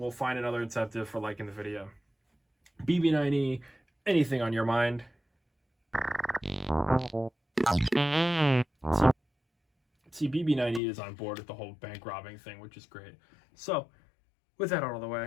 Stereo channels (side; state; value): right; drops out; at 10.8 s